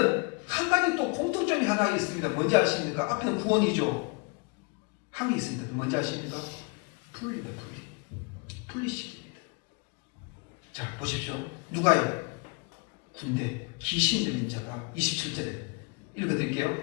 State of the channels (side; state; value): right; quieter; 31.5 dB